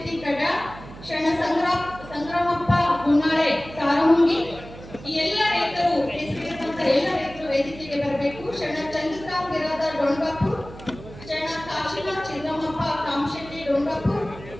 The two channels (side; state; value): right; noise; hum, 16 dB below the sound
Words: ಕಡ್ಯಾಳ್, ಶರಣ ಸಂಗ್ರಾಮಪ್ಪ ಗುನ್ನಾಳೆ ಕಾರಮುಂಗಿ. ಈ ಎಲ್ಲ ರೈತರು ಹೆಸರಿರುವಂತ ಎಲ್ಲ ರೈತರು ವೇದಿಕೆಗೆ ಬರಬೇಕು. ಶರಣ ಚಂದ್ರಕಾಂತ್ ಬಿರಾದರ್ ಡೊಂಗಾಪುರ್, ಶರಣ ಕಾಶಿನಾಥ್ ಚಿನ್ನಮ್ಮಪ್ಪ ಕಾಮಶೆಟ್ಟಿ ಡೊಂಗಾಪುರ್,